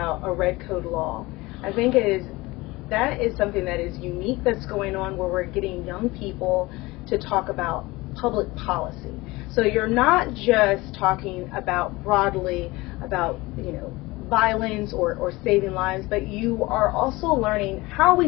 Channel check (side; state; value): right; quieter; 21.4 dB